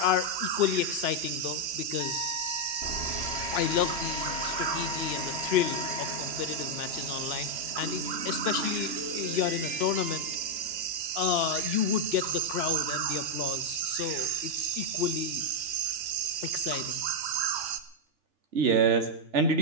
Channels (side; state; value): left; late; 2.9 ms